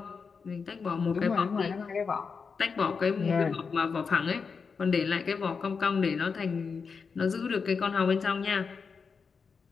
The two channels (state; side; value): quieter; right; 5.4 dB